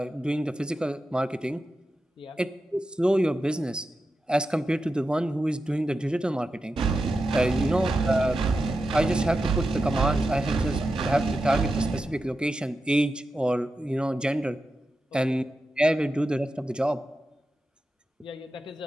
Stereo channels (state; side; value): normal; both; correlation 0.90